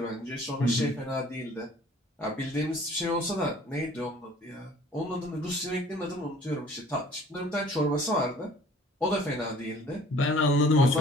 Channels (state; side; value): normal; both; correlation 0.52